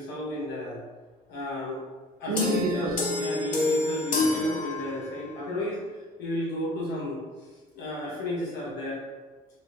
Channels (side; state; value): both; normal; correlation 0.47